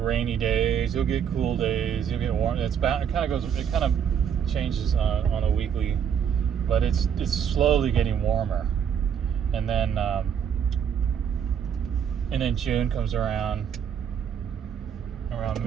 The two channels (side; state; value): left; quieter; 8.1 dB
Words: days, you'll get cool days, you'll get warm. It kind of changes on a weekly, but it's slowly getting warmer, and then June comes around